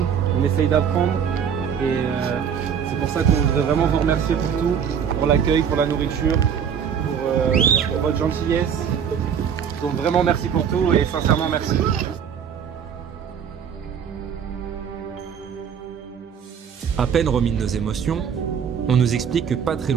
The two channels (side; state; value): left; quieter; 7.7 dB